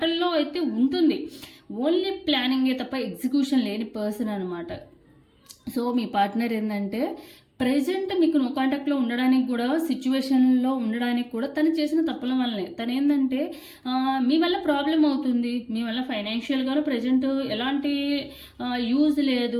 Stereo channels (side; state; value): both; identical; correlation 1.00